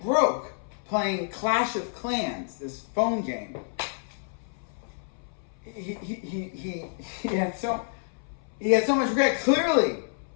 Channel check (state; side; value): silent; right; 58 dB below the other